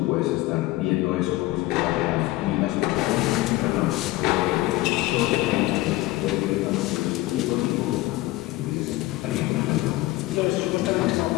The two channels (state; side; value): quieter; right; 18.6 dB